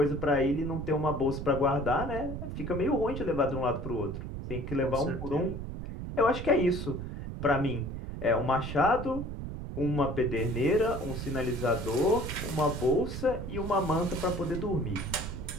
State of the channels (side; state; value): right; noise; rumble, 7 dB below the sound